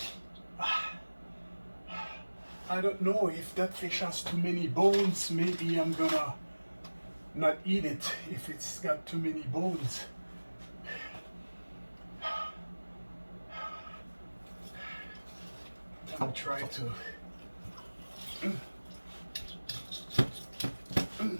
I don't know if that fish has too many bones. Maybe I'm gonna not eat it if it's got too many bones. I'm trying to.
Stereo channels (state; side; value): inverted; both; correlation -1.00